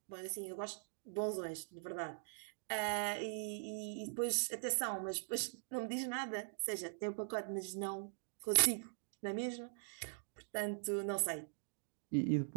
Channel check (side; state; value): left; silent; digital silence